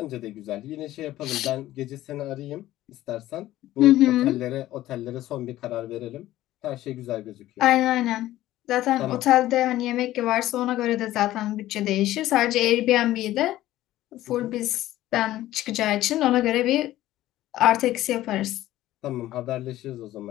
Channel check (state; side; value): quieter; right; 14.9 dB